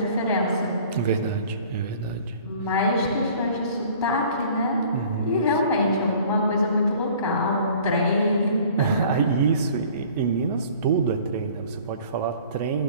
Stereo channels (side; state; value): both; inverted; correlation -0.50